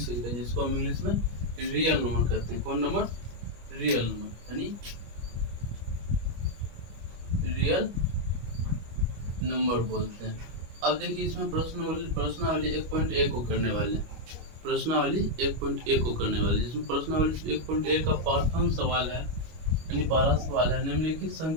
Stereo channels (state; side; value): late; left; 25 ms